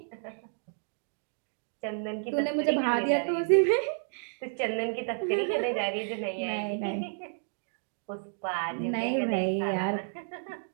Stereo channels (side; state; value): left; silent; digital silence